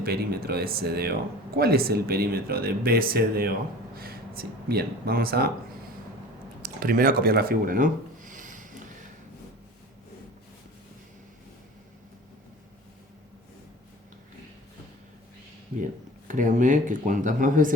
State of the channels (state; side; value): normal; both; correlation 0.40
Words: de CDO? ¿Cuál es el perímetro de BCDO? Sí, bien, vamos a primero a copiar la figura, ¿no? Bien, créanme que cuantas más